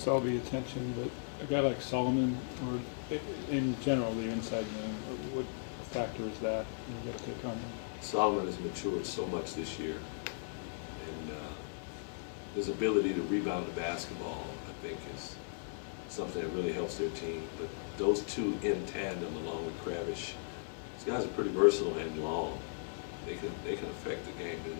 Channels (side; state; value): right; silent; 53 dB below the other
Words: all the attention, but a guy like Solomon, or in general, the inside man, what factor is that you get to come? Solomon has matured so much this year, and his ability to rebound the basketball, I think, is something that really helps their team. But those two in tandem, along with Kravish, these guys are pretty versatile and long. They can affect the game, there's